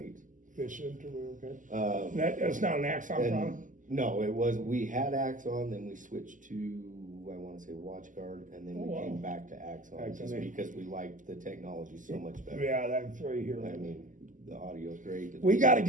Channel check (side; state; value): left; late; 0.37 ms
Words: Efficient or okay. That's not an Axon And product? no, we had Axon, then we switched to, I wanna say WatchGuard, and then we Oh, wow. came back to Axon, just Axon. because we liked the technology so much better. Yeah, that's right here. I mean, the audio's great. We got to